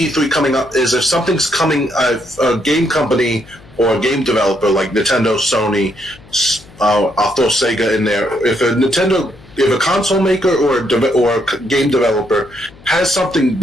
coming up is if something's coming, a game company or a game developer like Nintendo, Sony, I'll throw Sega in there. If a console maker or a game developer has something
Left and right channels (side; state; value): left; noise; hum, 24 dB below the sound